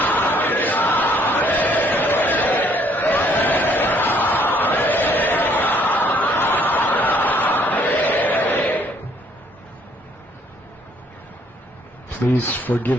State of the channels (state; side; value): normal; both; correlation 0.64